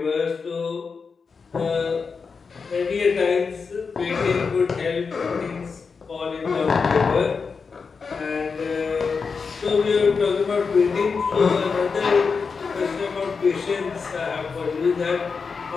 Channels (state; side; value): quieter; right; 5.2 dB